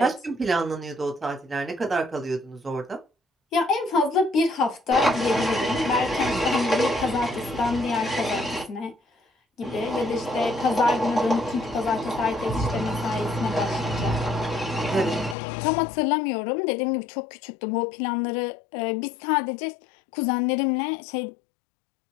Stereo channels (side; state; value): right; drops out; at 15.4 s